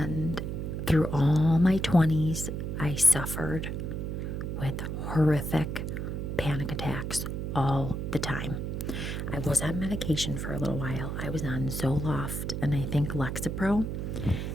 through all my 20s, I suffered with horrific panic attacks all the time. I was on medication for a little while. I was on Zoloft and I think Lexapro.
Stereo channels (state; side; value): noise; right; hum, 3 dB below the sound